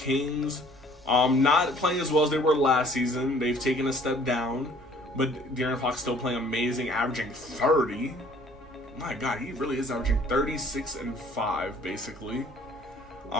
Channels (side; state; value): both; normal; correlation 0.56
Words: not playing as well as they were last season. They've taken a step down, but De'Aaron Fox still playing amazing, averaging 30. My God, he really is averaging 36 and 5 basically.